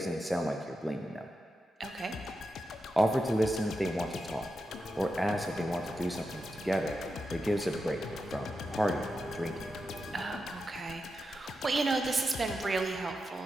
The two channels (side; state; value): both; normal; correlation 0.88